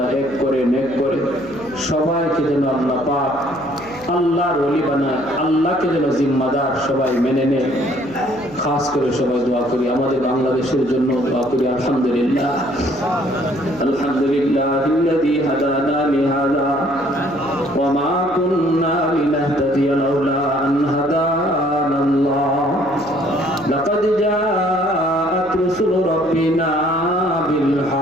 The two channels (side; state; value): left; noise; hum, 23 dB below the sound